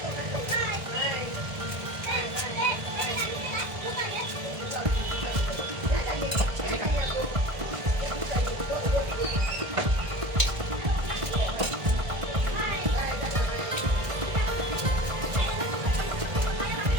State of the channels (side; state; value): left; late; 1.6 ms